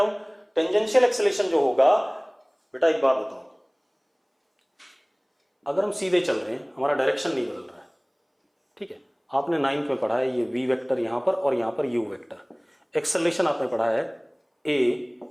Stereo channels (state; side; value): identical; both; correlation 1.00